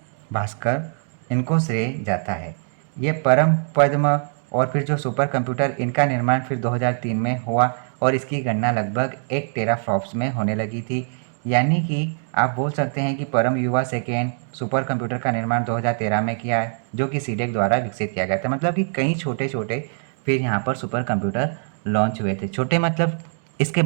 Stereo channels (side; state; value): left; silent; digital silence